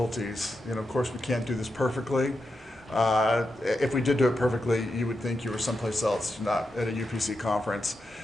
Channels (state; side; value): normal; both; correlation 0.87